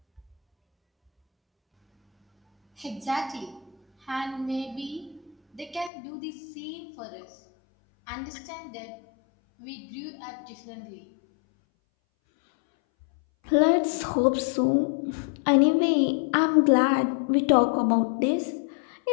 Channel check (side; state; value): right; drops out; at 5.9 s